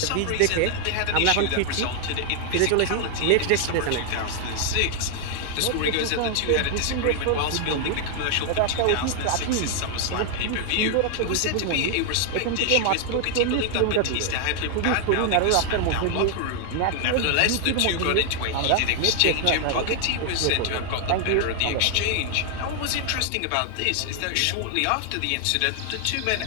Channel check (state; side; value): different; both; correlation 0.00